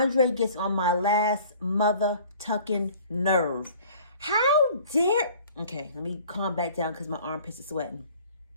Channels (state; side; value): inverted; both; correlation -0.50